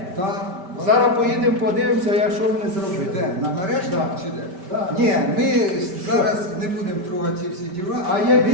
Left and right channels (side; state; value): left; late; 5.1 ms